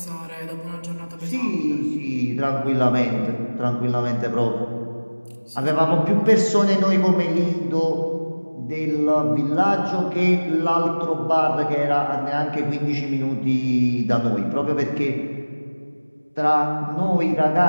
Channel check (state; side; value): inverted; both; correlation -1.00